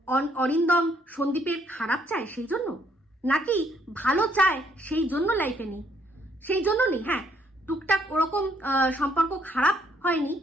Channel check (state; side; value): normal; both; correlation 0.69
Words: অরিন্দম সন্দীপের খারাপ চায় সেই জন্য, নাকি ভালো চায় সেই জন্য লাইফে নেই? সেই জন্য নেই। হ্যাঁ, টুকটাক ওরকম সম্পর্ক খারাপ হয়নি,